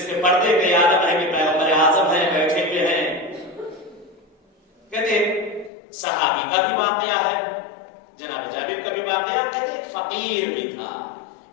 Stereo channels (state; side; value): drops out; right; at 5.7 s